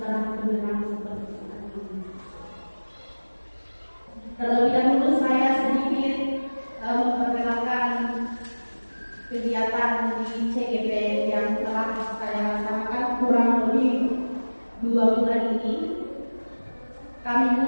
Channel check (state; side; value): inverted; both; correlation -1.00